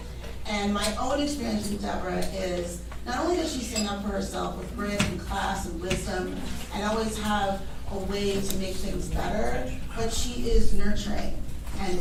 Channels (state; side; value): identical; both; correlation 1.00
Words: And my own experience with Deborah is, not only does she stand up for herself with grit and class and wisdom, and always have a way to make things better, but she is nurturing